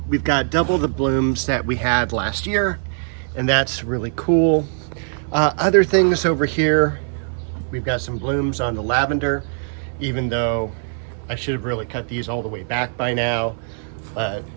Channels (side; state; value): left; silent; 60 dB below the other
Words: we've got double the blooms that we had last year, and that's really cool. Other things over here, we've got some blooms on the lavender, even though I should have really cut these all the way back by now, but